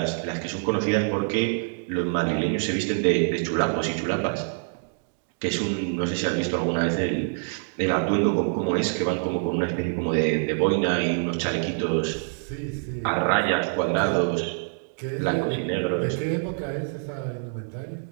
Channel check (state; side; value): silent; left; digital silence